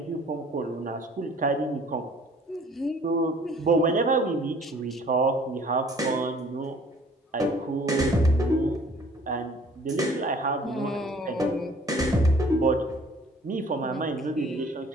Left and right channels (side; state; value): both; normal; correlation 0.54